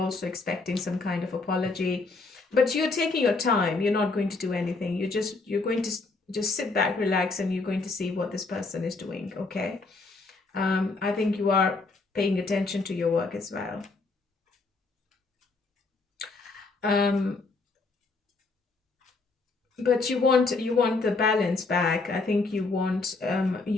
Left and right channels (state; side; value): quieter; right; 3.7 dB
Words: expecting some kind of apology. But you're taking your time. You're not going to do anything. You're going to just sit back, relax, and you're going to see what this person is doing. Okay. I think you are paying attention to your work as well. But you want the balance back. I think you want